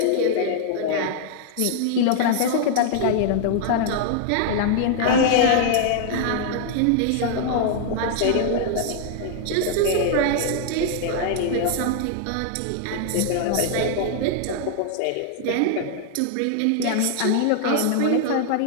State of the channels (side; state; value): both; different; correlation -0.01